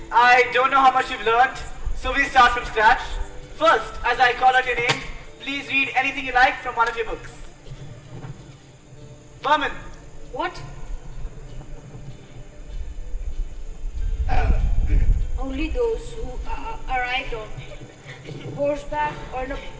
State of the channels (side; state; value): both; identical; correlation 1.00